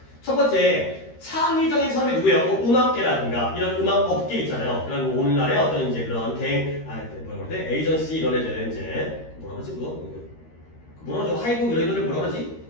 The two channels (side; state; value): right; late; 13 ms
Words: 첫 번째, 창의적인 사람이 누구예요? 뭐 음악계라든가 이런 음악 업계 있잖아요. 그런 오늘날의 어떤 이제 그런 뭐라 그러지? 에이전시 이런 애들 이제 뭐라 그러지 그거? 뭐라 그러죠? 하이브 이런 애들을 뭐라 그러지?